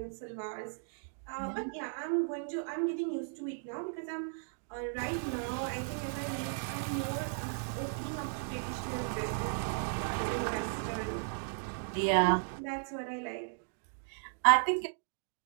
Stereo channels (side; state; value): left; silent; digital silence